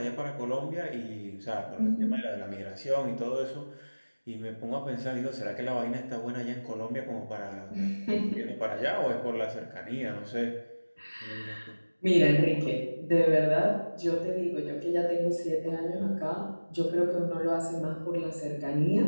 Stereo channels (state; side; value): inverted; both; correlation -1.00